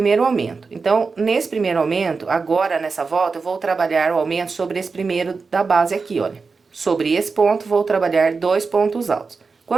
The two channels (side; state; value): left; quieter; 4.6 dB